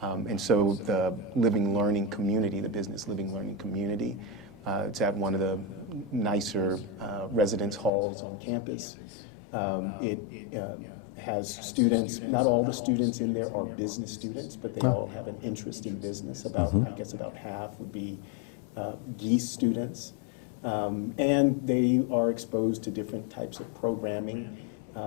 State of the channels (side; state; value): right; drops out; at 7.9 s